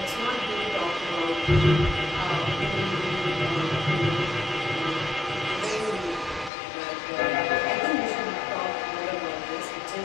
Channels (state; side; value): drops out; right; at 6.5 s